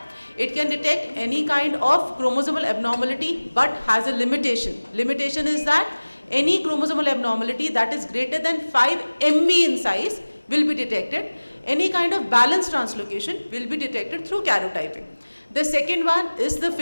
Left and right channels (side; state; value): both; inverted; correlation -1.00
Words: it can detect any kind of chromosomal abnormality but has a limitation. Limitation is that any chromosomal abnormality that is greater than 5 MB in size will be detected. Any kind of balanced translocation will be detected through karyotyping. The second one is the